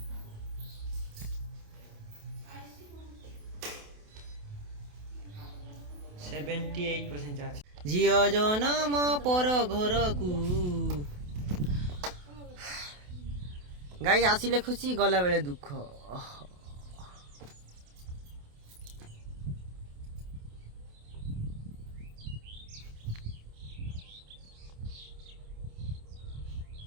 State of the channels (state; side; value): late; left; 28 ms